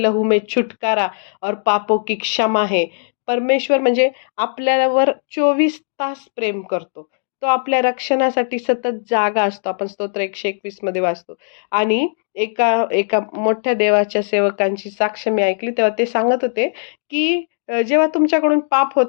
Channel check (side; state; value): right; silent; digital silence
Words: लहू में छुटकारा और पापों की क्षमा है. परमेश्वर म्हणजे आपल्यावर 24 तास प्रेम करतो. तो आपल्या रक्षणासाठी सतत जागा असतो. आपण स्तोत्र 121 मध्ये वाचतो. आणि एका एका मोठ्या देवाच्या सेवकांची साक्ष मी ऐकली, तेव्हा ते सांगत होते, की जेव्हा तुमच्याकडून पाप